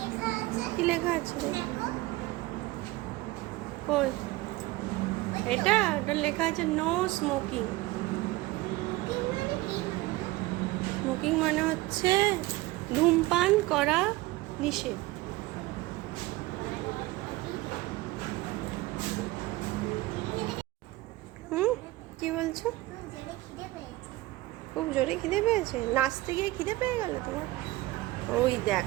আছে। কি লেখা আছে রে? দেখো কই? এটা ওটা লেখা আছে নো স্মোকিং। কি মানে কি? স্মোকিং মানে হচ্ছে ধূমপান করা নিষেধ। হুম, কি বলছো? খুব জোরে খিদে পেয়েছে? নাচতে গিয়ে খিদে পেয়ে গেল তোমার? ওই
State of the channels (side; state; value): left; quieter; 19.2 dB